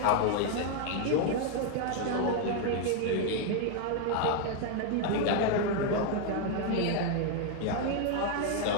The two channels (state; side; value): different; both; correlation 0.01